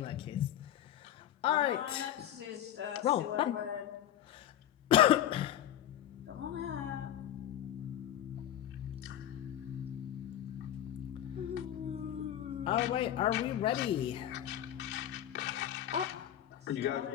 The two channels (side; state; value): right; quieter; 11.6 dB